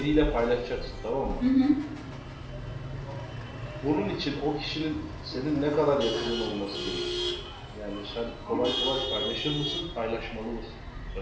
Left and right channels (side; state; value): both; identical; correlation 1.00